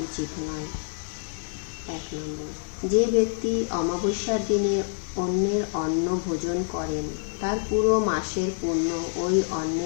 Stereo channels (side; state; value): right; silent; digital silence